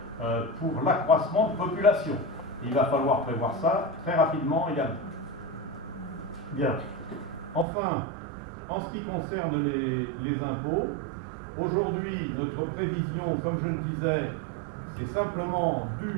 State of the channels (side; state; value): left; drops out; at 7.7 s